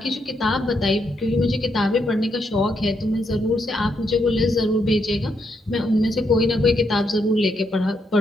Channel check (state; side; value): normal; both; correlation 0.79